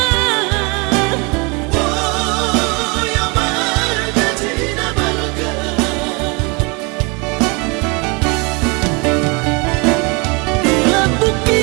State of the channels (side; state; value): left; quieter; 29.6 dB